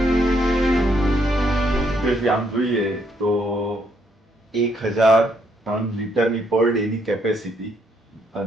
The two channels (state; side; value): normal; both; correlation 0.72